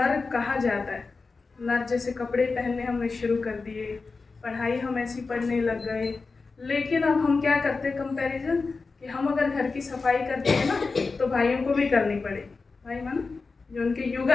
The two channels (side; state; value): right; quieter; 4.2 dB